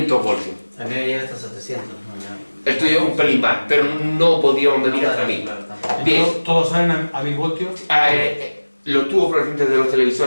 voltios. A mí me llega hasta 700. Esto es un pelín más, pero no podíamos medir hasta 1000. Bien. ¿Todos salen a 1000 voltios? Los tubos fluorescentes de los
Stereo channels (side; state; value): both; inverted; correlation -1.00